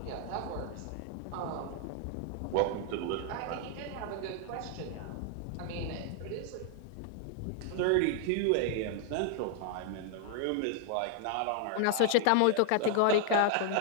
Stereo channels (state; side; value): different; both; correlation 0.00